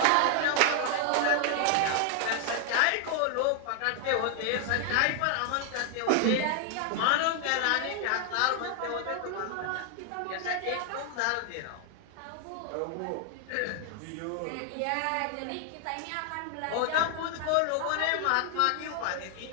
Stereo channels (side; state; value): both; different; correlation 0.00